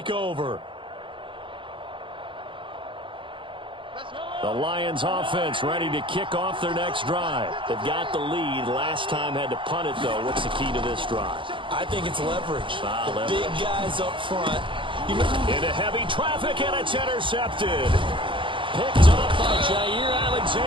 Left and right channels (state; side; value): late; left; 0.25 ms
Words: over. The Lions offense ready to kick off their next drive. They've got the lead. Last time had to punt it, though. What's the key to this drive? I think it's leverage. Leverage. Big guys up front. Into heavy traffic, and it's intercepted. Picked up by Jair